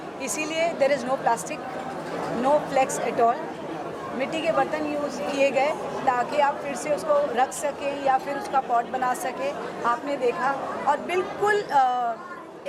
इसीलिए there is no plastic, no flex at all. मिट्टी के बर्तन यूज़ किए गए ताकि आप फिर से उसको रख सकें या फिर उसका पॉट बना सकें, आपने देखा। और बिल्कुल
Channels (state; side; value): identical; both; correlation 1.00